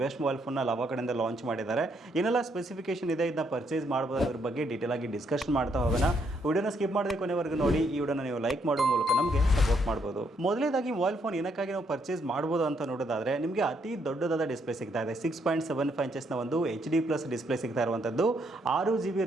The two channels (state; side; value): normal; both; correlation 0.73